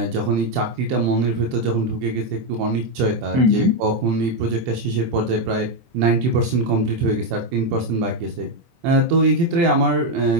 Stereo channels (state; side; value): late; left; 24 ms